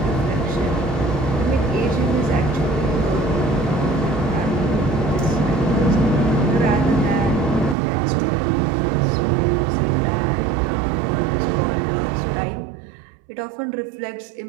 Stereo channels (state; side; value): drops out; left; at 7.8 s